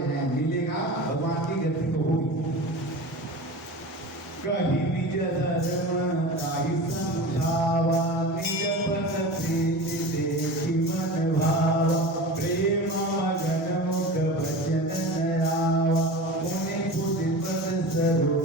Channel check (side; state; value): both; normal; correlation 0.32